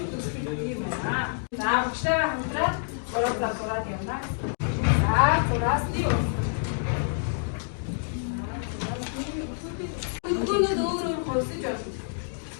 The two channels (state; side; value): silent; right; digital silence